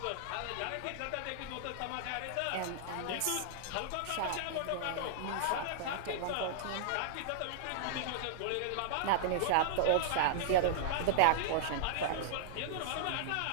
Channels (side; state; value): both; different; correlation -0.01